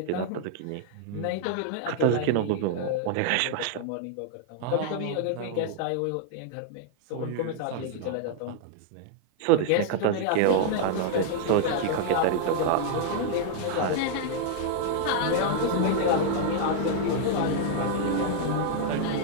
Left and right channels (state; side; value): different; both; correlation -0.01